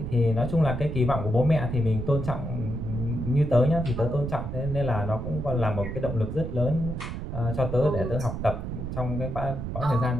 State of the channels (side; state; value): right; noise; rumble, 5 dB below the sound